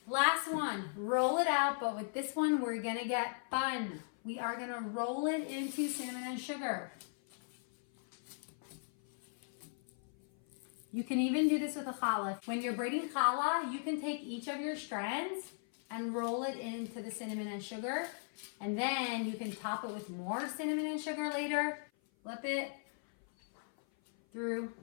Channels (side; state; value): right; silent; 53 dB below the other